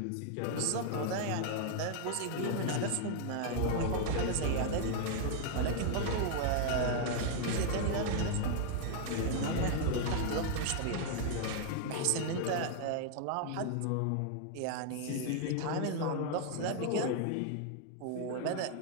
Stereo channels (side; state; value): both; different; correlation 0.00